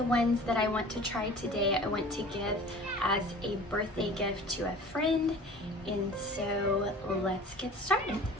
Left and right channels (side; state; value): both; normal; correlation 0.43